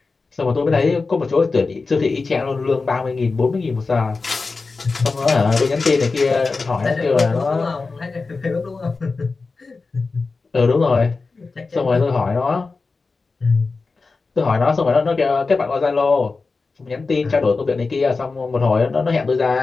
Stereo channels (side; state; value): right; quieter; 4.1 dB